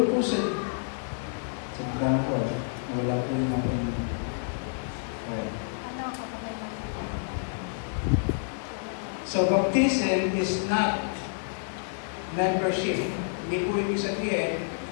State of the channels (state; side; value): silent; right; digital silence